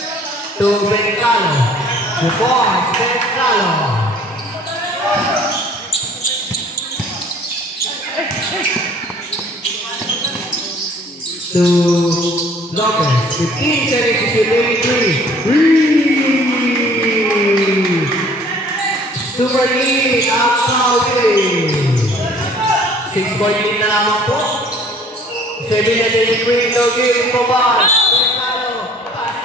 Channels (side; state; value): both; normal; correlation 0.54